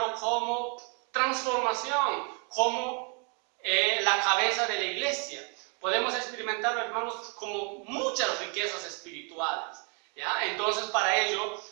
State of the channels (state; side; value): quieter; left; 36.9 dB